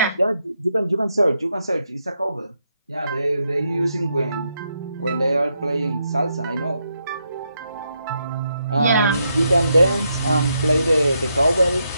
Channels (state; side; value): inverted; both; correlation -0.80